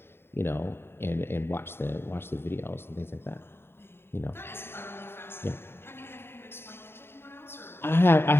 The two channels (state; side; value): late; right; 0.11 ms